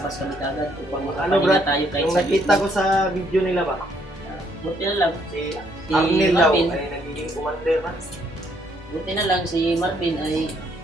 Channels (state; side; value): normal; both; correlation 0.69